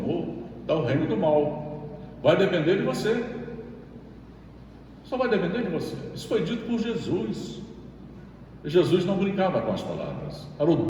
está o reino do mal. Vai depender de você. Só vai depender de você. Isso foi dito por Jesus. Jesus não brincava com as palavras. Era o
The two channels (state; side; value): identical; both; correlation 1.00